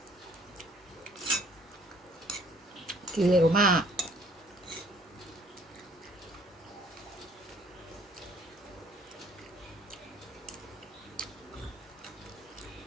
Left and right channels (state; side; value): normal; both; correlation 0.59